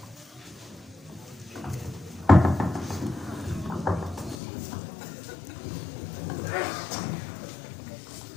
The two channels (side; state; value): right; drops out; at 4.4 s